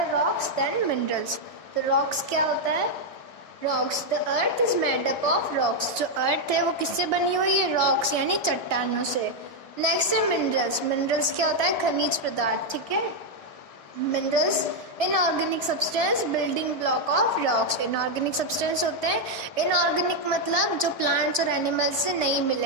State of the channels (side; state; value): right; late; 1.4 ms